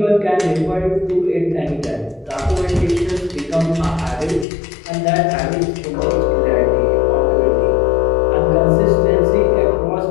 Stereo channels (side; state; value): right; drops out; at 4.5 s